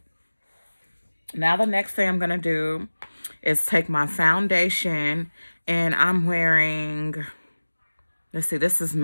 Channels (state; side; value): inverted; both; correlation -1.00